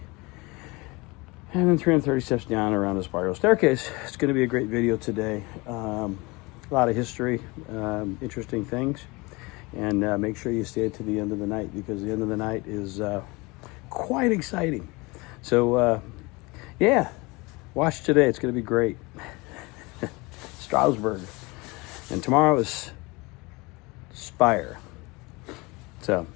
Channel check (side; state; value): right; quieter; 25.1 dB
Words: and then 330 steps down around a spiral staircase. It's going to be a great video today. A lot of history, interesting things. And make sure you stay to the end of the night, because the end of the night is quite exciting. So, yeah, watch today. It's going to be great. Strasbourg. And tomorrow is Spire. So,